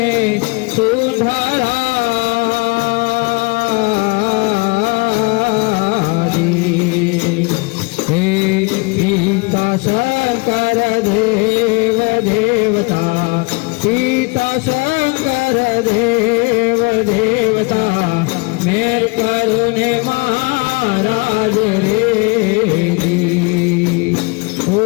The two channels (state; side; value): quieter; right; 28.5 dB